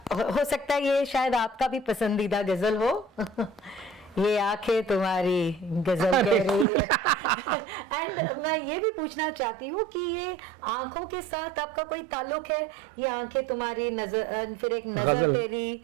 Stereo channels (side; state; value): left; drops out; at 6.7 s